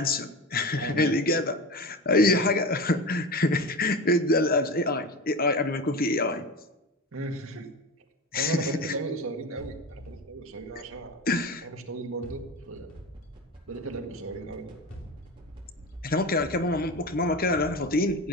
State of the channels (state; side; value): normal; both; correlation 0.26